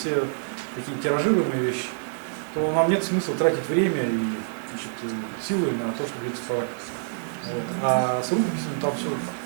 такие тиражируемые вещи, то нам нет смысла тратить время и, значит, силы на то, чтобы их цифровать. Вот. А с рукописями там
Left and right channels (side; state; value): left; silent; digital silence